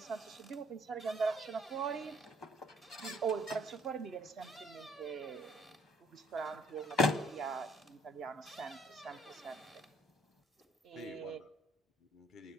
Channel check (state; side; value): normal; both; correlation 0.62